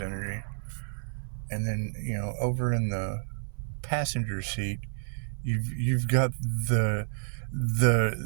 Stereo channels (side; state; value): left; silent; 58 dB below the other